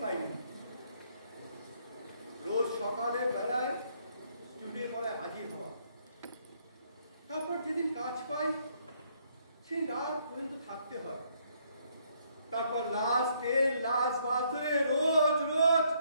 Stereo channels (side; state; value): both; inverted; correlation -0.70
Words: পাইনি। রোজ সকালের বেলায় স্টুডিও পড়ায় হাজির হওয়া, তারপর যেদিন কাজ পাই সেই রাত পর্যন্ত থাকতে হয়। তারপর লাশ তেল, লাশ বাস ধরে রোজ